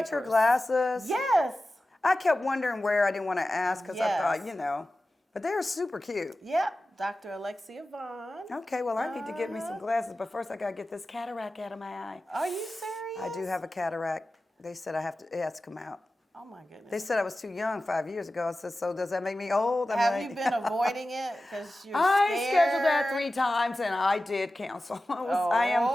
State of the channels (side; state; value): both; normal; correlation 0.95